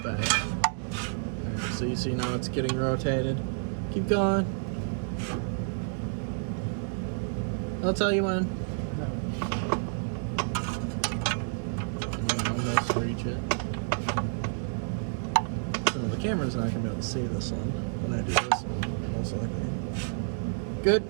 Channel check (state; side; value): silent; left; digital silence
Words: Alright, so you see now it's getting rotated. Keep going. I'll tell you when. Almost reach it. So the camera's not gonna be able to see this one when I do this one, most likely. Good.